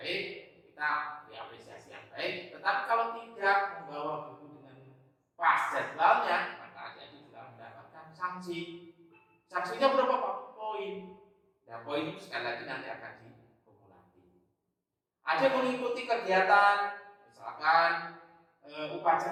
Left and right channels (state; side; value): identical; both; correlation 1.00